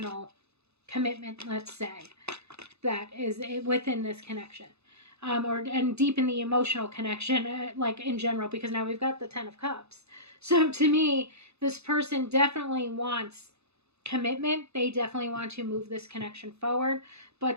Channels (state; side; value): late; left; 0.80 ms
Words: commitment, let's say, that is within this connection. And deepen the emotional connection, like in general, because now we've got the 10 of Cups. So to me, this person definitely wants commitment. They definitely want to move this connection forward,